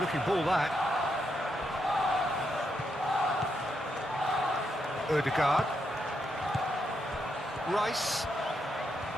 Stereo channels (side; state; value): both; normal; correlation 0.81